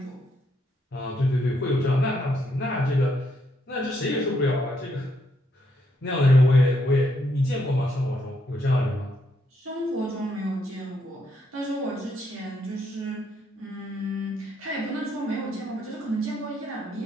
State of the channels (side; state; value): both; normal; correlation 0.75